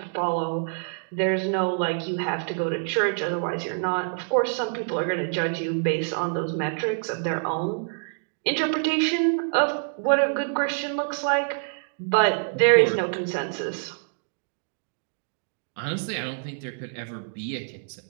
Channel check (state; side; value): silent; left; digital silence